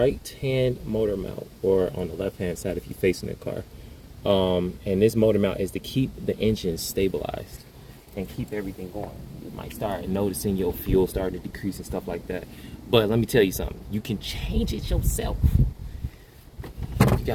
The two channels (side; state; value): both; identical; correlation 1.00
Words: motor mount, or on the left-hand side if you're facing the car. And this motor mount is to keep the engine stabilized and keep everything going. You might start noticing your fuel start to decrease and stuff like that. But let me tell you something. You can change it yourself. You